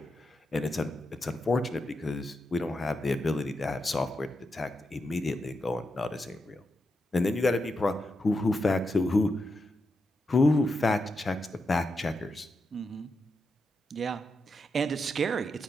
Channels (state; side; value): normal; both; correlation 0.86